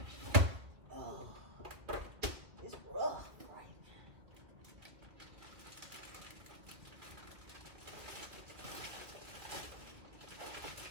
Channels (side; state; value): left; late; 2.2 ms